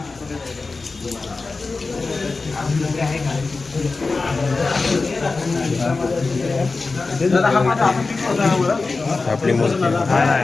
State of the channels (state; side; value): quieter; right; 3.9 dB